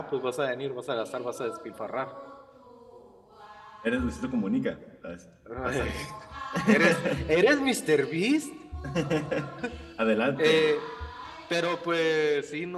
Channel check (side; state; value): both; identical; correlation 1.00